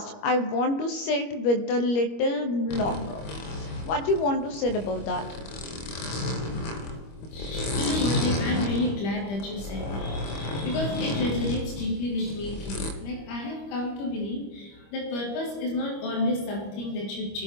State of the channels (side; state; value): right; late; 25 ms